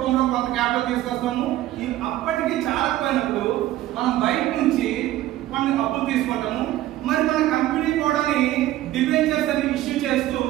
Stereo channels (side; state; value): left; quieter; 14.5 dB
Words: కొంత క్యాపిటల్ తీసుకొస్తాము. ఈ అప్పటికి చాలకపోయినప్పుడు మనం బయట నుంచి కొన్ని అప్పులు తీసుకుంటాము. మరి మన కంపెనీ కూడా డిబెంచర్స్ అని ఇష్యూ చేస్తూ